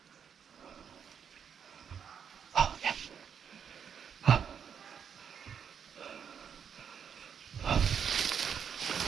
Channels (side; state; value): left; quieter; 7.5 dB